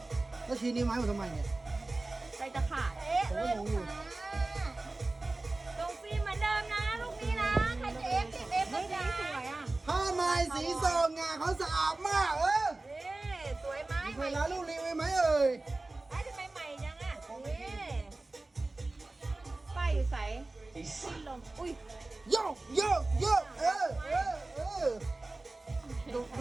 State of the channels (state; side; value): quieter; left; 3.0 dB